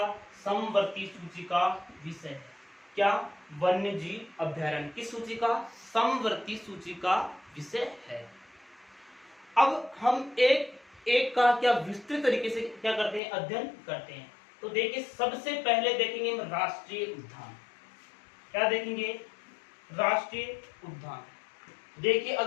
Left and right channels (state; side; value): drops out; right; at 13.2 s